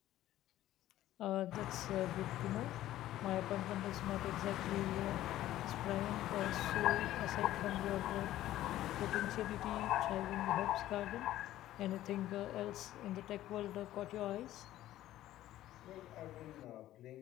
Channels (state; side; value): quieter; right; 14.0 dB